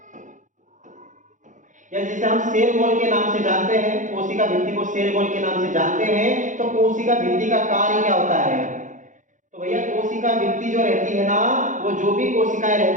या जिसे हम सेल वॉल के नाम से जानते हैं, कोशिका भित्ति को सेल वॉल के नाम से जानते हैं, तो कोशिका भित्ति का कार्य क्या होता है। तो भैया कोशिका भित्ति जो रहती है ना, वो जो भी कोशिकाएं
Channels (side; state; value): left; late; 0.37 ms